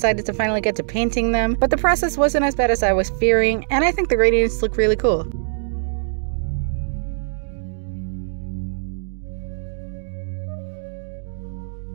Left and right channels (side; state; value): left; silent; digital silence